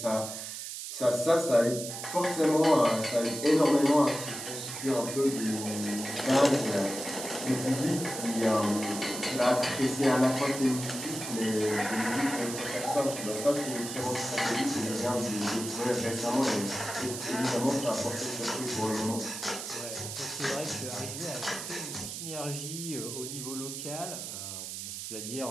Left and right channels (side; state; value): right; noise; hiss, 7 dB below the sound